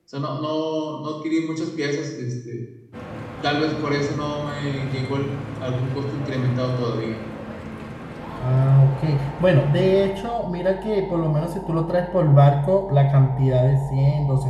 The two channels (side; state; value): both; identical; correlation 1.00